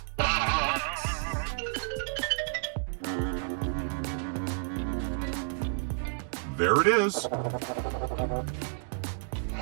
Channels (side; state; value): left; silent; digital silence